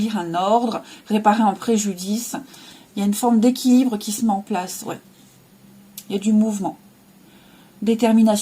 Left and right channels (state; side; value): identical; both; correlation 1.00